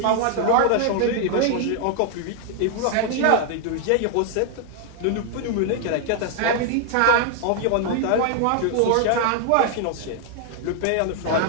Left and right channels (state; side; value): different; both; correlation 0.00